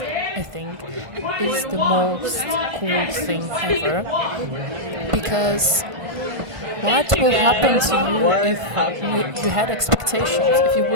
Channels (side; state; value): left; late; 1.5 ms